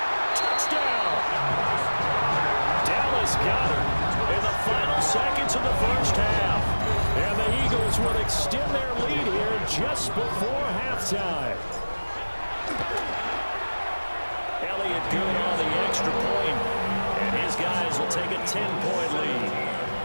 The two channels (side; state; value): both; inverted; correlation -1.00